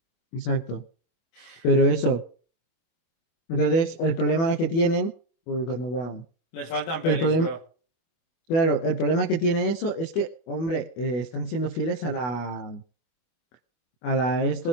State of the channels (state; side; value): late; right; 25 ms